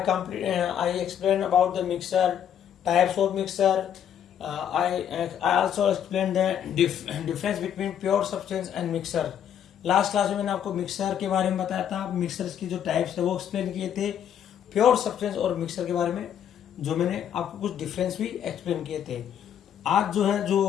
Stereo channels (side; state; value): right; quieter; 9.4 dB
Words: explained about the mixer, types of mixer. I also explained the difference between pure substance and mixer. Last class में मैंने आपको mixer के बारे में बताया था, mixer की जो टाइप्स है वो एक्सप्लेन किए थे, प्योर सब्सटेंस और मिक्सर के बारे में जो मैंने आपको कुछ डिफरेंस भी एक्सप्लेन किए थे। आज